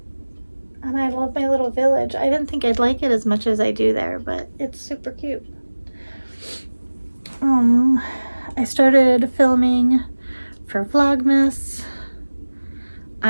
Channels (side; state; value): both; inverted; correlation -1.00